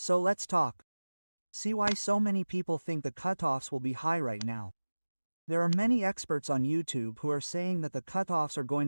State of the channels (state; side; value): inverted; both; correlation -1.00